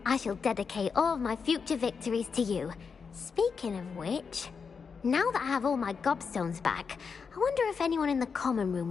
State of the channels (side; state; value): right; quieter; 5.7 dB